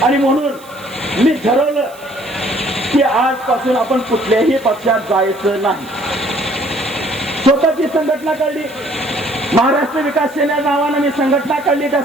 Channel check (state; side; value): noise; right; hiss, 23 dB below the sound